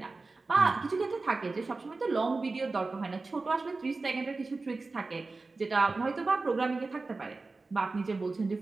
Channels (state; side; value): quieter; left; 3.7 dB